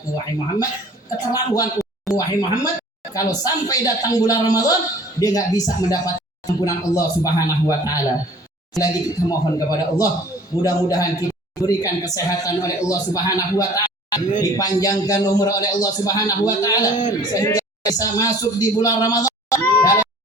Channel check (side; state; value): both; normal; correlation 0.49